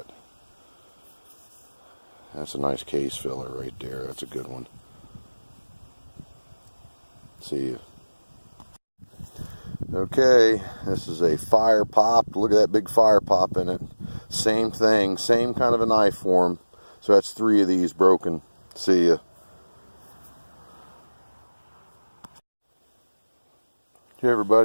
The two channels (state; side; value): inverted; both; correlation -1.00